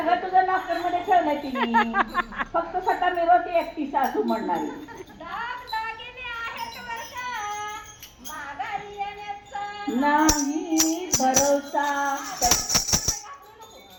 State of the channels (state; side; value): identical; both; correlation 1.00